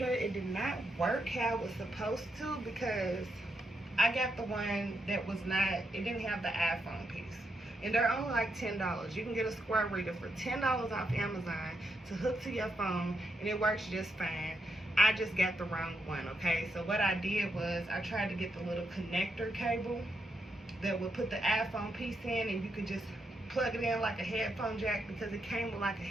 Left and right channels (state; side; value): normal; both; correlation 0.81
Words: It did not work how it was supposed to because I got the one that was not, it didn't have the iPhone piece. And they're only like $10. You can get a Square Reader for $10 off Amazon to hook to your phone, and it works just fine. I just got the wrong one, okay? So what I did was I tried to get the little connector cable that would put the iPhone piece in, and you could just plug it in like a headphone jack, because it came with like a